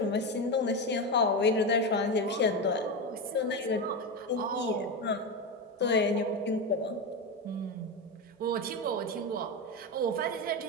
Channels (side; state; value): both; normal; correlation 0.16